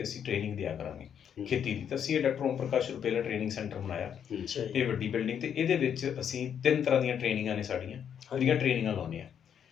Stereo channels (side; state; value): right; quieter; 8.4 dB